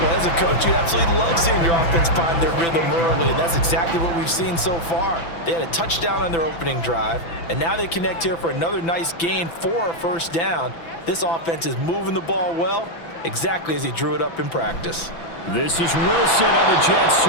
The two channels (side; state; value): right; late; 6.0 ms